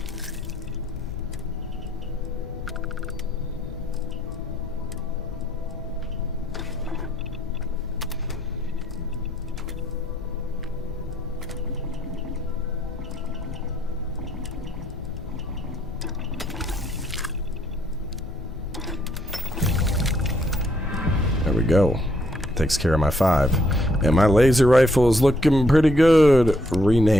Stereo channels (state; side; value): normal; both; correlation 0.70